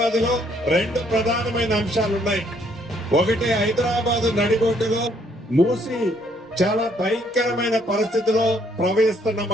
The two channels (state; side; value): normal; both; correlation 0.67